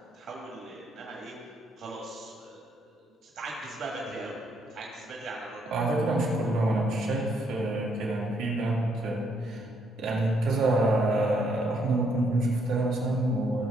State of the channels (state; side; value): normal; both; correlation 0.72